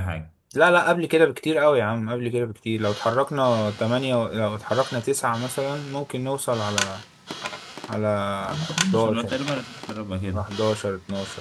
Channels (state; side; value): identical; both; correlation 1.00